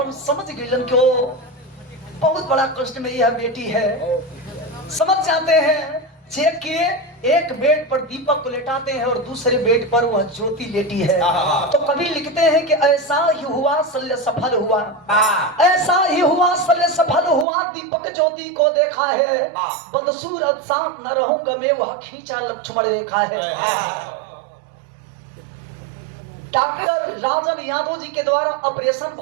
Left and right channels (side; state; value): left; drops out; at 17.4 s